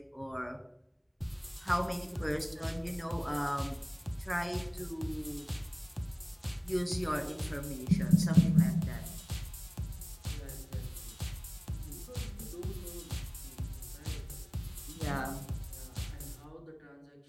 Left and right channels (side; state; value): both; identical; correlation 1.00